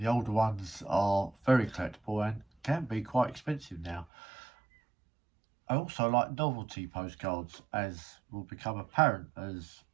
older ones are very collectible and can be quite expensive now. I also like novelty postcards, as will become apparent as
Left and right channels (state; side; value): drops out; left; at 4.0 s